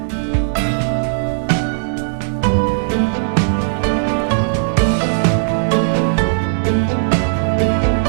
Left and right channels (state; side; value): silent; left; digital silence